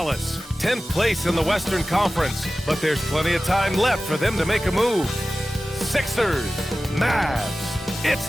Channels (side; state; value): both; normal; correlation 0.96